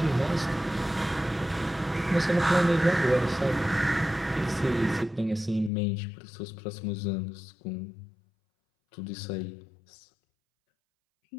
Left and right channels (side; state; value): right; drops out; at 5.7 s